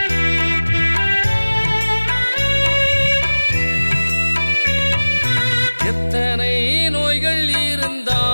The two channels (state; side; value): inverted; both; correlation -1.00